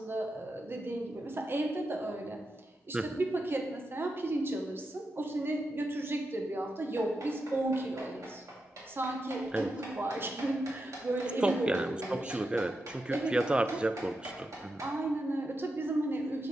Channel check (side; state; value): both; normal; correlation 0.87